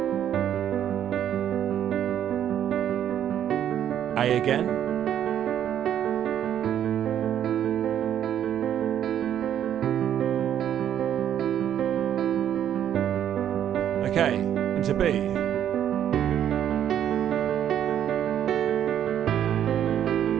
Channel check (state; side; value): quieter; left; 10.1 dB